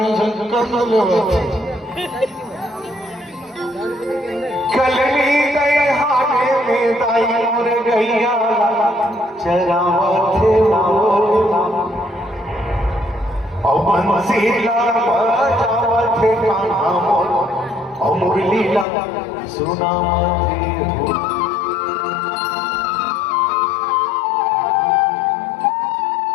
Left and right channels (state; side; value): drops out; right; at 18.9 s